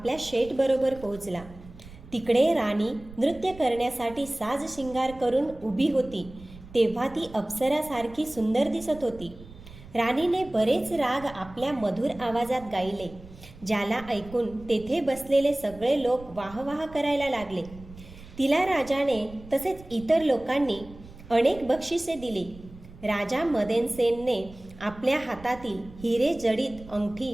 शेठबरोबर पोहोचला. तिकडे राणी नृत्य करण्यासाठी साज शिंगार करून उभी होती तेव्हा ती अप्सरासारखी सुंदर दिसत होती. राणीने बरेच राग आपल्या मधुर आवाजात गायले, ज्याला ऐकून तेथे बसलेले सगळे लोक वाहवाह करायला लागले. तिला राजाने तसेच इतर लोकांनी अनेक बक्षिसे दिली. राजा मदनसेनने आपल्या हातातील हिरे जडित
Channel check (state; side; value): noise; right; rumble, 18 dB below the sound